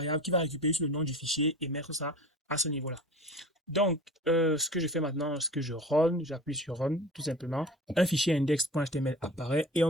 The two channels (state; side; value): normal; both; correlation 0.37